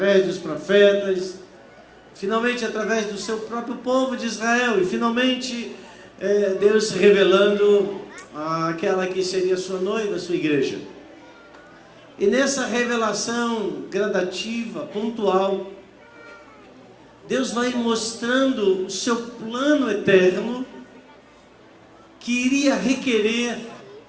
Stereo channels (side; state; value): both; identical; correlation 1.00